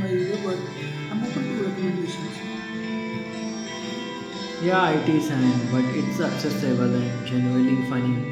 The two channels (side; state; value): both; identical; correlation 1.00